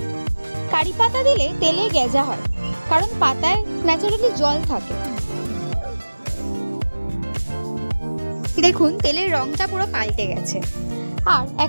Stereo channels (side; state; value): both; inverted; correlation -1.00